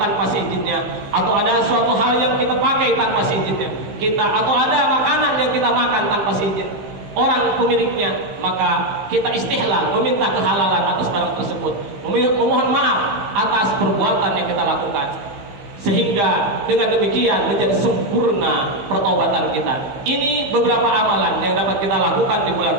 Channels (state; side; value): late; left; 15 ms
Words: tanpa seizinnya, atau ada suatu hal yang kita pakai tanpa seizinnya atau ada makanan yang kita makan tanpa seizin orang pemiliknya, maka kita istihlal, meminta kehalalan atas barang tersebut, memohon maaf atas perbuatan yang kita lakukan, sehingga dengan demikian menjadi sempurna pertobatan kita. Ini beberapa amalan yang dapat kita lakukan di bulan